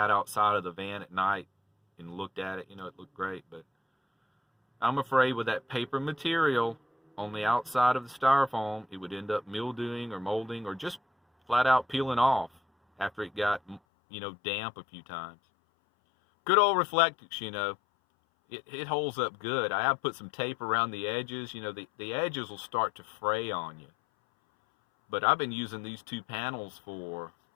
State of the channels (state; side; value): drops out; right; at 13.8 s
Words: outside of the van at night and looked at it. It looked great. But I'm afraid with that paper material on the outside of the styrofoam, it would end up mildewing or molding or just flat out peeling off after it got damp a few times. Good old Reflectix, it holds up good. I have put some tape around the edges. The edges will start to fray on you. But I've been using these 2 panels for,